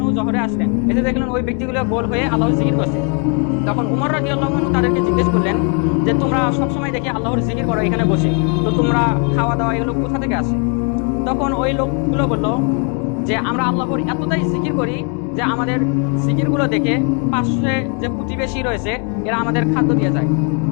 জোহরে আসলেন, এসে দেখলেন ওই ব্যক্তিগুলো গোল হয়ে আল্লাহর জিকির করছে। তখন উমর রাদিয়াল্লাহু আনহু তাদেরকে জিজ্ঞেস করলেন যে তোমরা সবসময় দেখি আল্লাহর জিকির করো এখানে বসে, তো তোমরা খাওয়া দাওয়া এগুলো কোথা থেকে আসে? তখন ওই লোকগুলো বলল যে আমরা আল্লাহর এতটাই জিকির করি যে আমাদের জিকিরগুলো দেখে পাশে যে প্রতিবেশী রয়েছে এরা আমাদের খাদ্য দিয়ে যায়।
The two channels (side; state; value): right; quieter; 36.4 dB